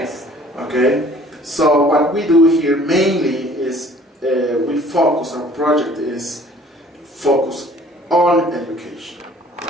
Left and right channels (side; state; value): both; normal; correlation 0.53